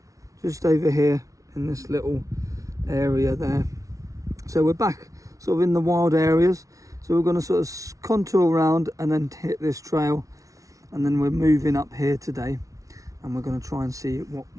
just over here in this little area there. So we're back sort of in the wild areas. So we're going to sort of contour around and then hit this trail, and then we're moving up here today, and we're going to try and see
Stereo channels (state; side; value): late; left; 0.17 ms